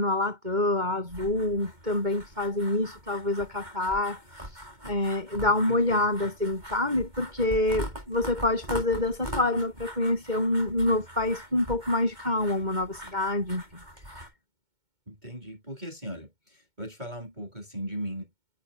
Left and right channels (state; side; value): late; left; 2.2 ms